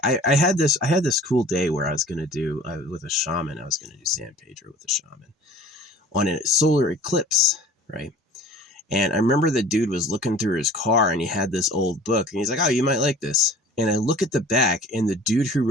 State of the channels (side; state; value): both; normal; correlation 0.46